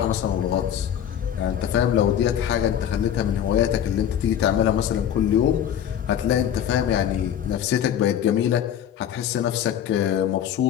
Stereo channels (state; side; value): quieter; right; 9.8 dB